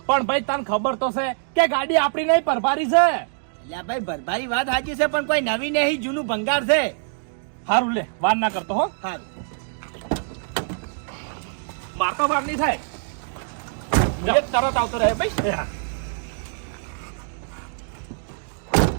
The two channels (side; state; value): left; silent; digital silence